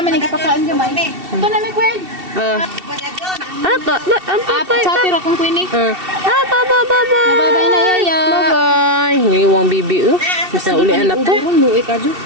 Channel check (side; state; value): left; late; 2.7 ms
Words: ni kapakaan gamay. Ito na mi Queen. Chati ra kong Queen eh. Bye-bye. Bye-bye na yaya. Bye-bye. Ngiwang bibi bisa uli anak to. Luwi ka jo.